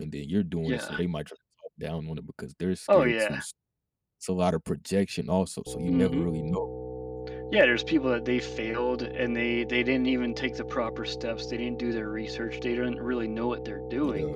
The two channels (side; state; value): both; identical; correlation 1.00